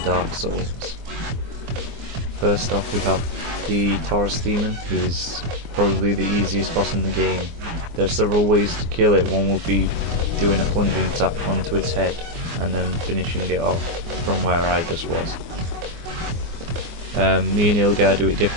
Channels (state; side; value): late; left; 24 ms